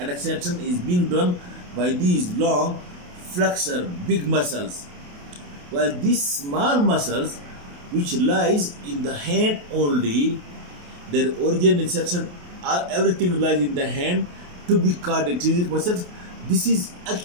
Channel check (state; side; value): late; left; 28 ms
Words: extension is being done by these long flexor big muscles, while these small muscles which lies in the hand only, their origin, insertion, everything lies in the hand, to be called intrinsic muscles. This is